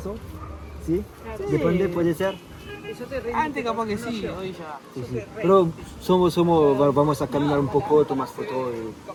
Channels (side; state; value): both; identical; correlation 1.00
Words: ¿sí? Depende, puede ser. Antes capaz que sí, hoy ya. Sí, sí. Pero vamos a caminar un poco, tomas fotos